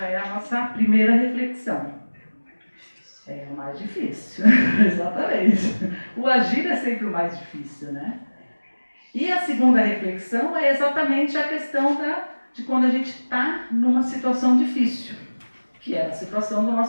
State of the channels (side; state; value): both; inverted; correlation -1.00